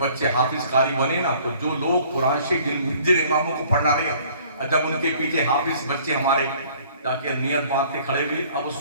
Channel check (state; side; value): inverted; both; correlation -0.55